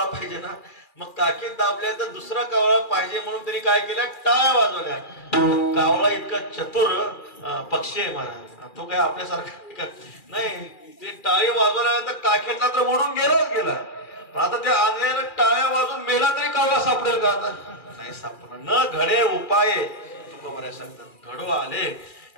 पाहिजे ना, मग काखेत दाबल्यानंतर दुसरा कावळा पाहिजे म्हणून त्यांनी काय केलं, टाळ्या वाजवल्या. कावळा इतका चतुर पक्षी आहे महाराज, तो काय आपल्यासारखा नाही. ते टाळी वाजवल्यानंतर काखेतला तर मोडून गेलाच गेला, पण आता त्या आंधळ्याला टाळ्या वाजून मेला तरी कावळा सापडेल का, आता नाही सापडणार. न घडे उपाय तुकोबराय सांगतात, घडो आले.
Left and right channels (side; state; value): right; late; 2.4 ms